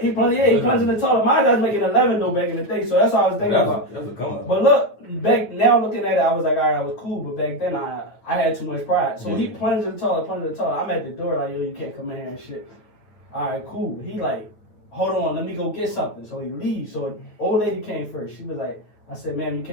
plunging the toilet. My job's making 11 though back in the day, so that's all I was thinking about. That was a come up. But look, now looking at it, I was like, all right, I was cool. But back then, I had too much pride. So he plunged the toilet. I'm at the door like, yo, you can't come in here and shit. All right, cool. He like, hold on, let me go get something. So he leaves. So an old lady came first. She was like, I said, ma'am, you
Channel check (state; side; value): late; right; 9.3 ms